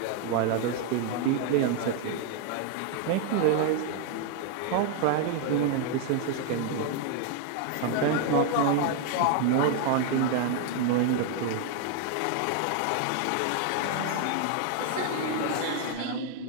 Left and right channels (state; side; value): different; both; correlation 0.00